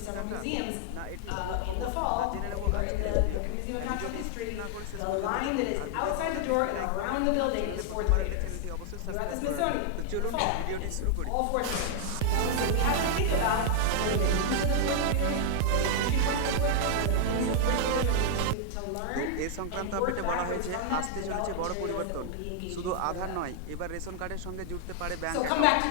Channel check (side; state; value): both; different; correlation 0.00